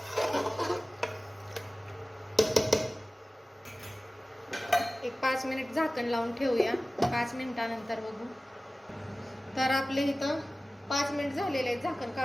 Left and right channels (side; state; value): both; normal; correlation 0.97